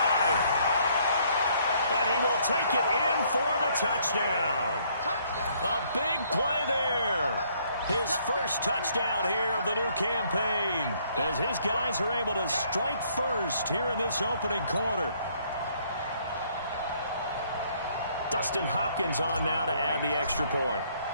And he will take it in for the touchdown. A big play there. His first touchdown here of the new campaign, as his guys are able to strike first here in this opening quarter. Dustin Hopkins on now to add the extra point.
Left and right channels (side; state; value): both; inverted; correlation -0.66